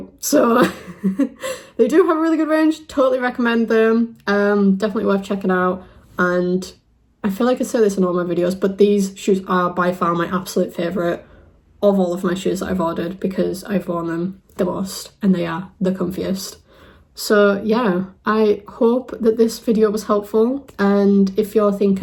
so they do have a really good range. Totally recommend them. Definitely worth checking out. And I feel like I say this in all my videos, but these shoes are by far my absolute favourite of all of my shoes that I've ordered, because I've worn them the most and they are the comfiest. So yeah, I hope that this video was helpful, and if you're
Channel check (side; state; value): both; identical; correlation 1.00